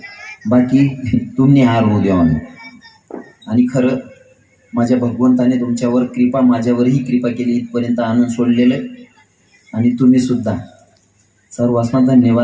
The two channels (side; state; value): both; identical; correlation 1.00